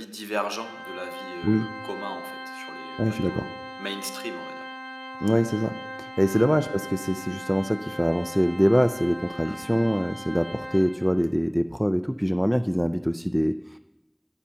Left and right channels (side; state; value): both; identical; correlation 1.00